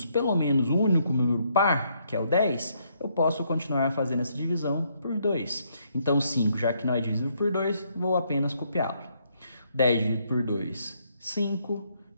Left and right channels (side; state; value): both; inverted; correlation -0.73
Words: pelo menos um único número par, que é o 10, eu posso continuar fazendo essa divisão por 2. Então, 5, já que não é divisível por 2, vou apenas copiá-lo. 10 dividido por 2, 5.